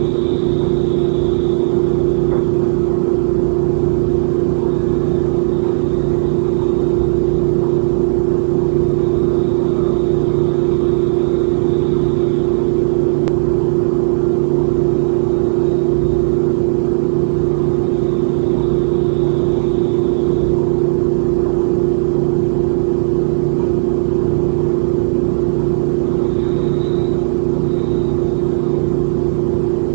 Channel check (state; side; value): silent; left; digital silence